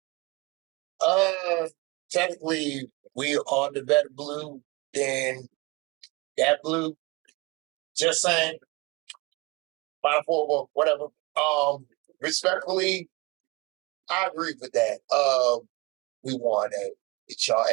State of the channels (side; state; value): left; quieter; 25.8 dB